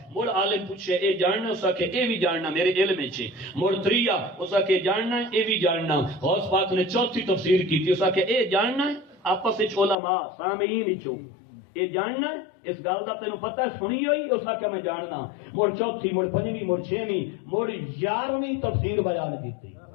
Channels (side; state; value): right; drops out; at 10.0 s